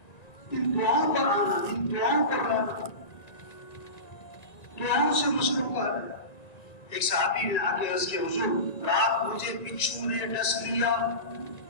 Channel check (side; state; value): right; late; 1.9 ms